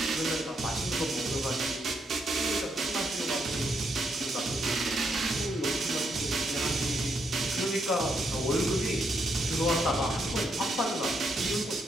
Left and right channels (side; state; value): both; normal; correlation 0.78